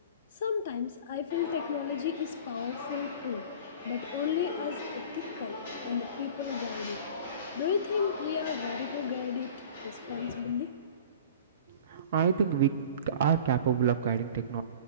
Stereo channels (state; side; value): inverted; both; correlation -0.41